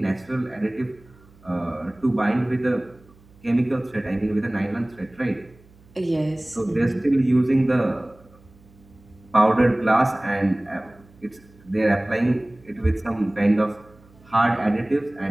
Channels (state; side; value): noise; right; hum, 27 dB below the sound